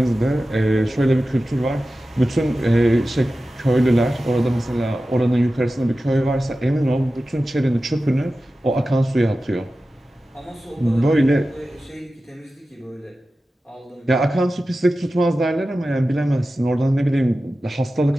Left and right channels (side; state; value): both; normal; correlation 0.94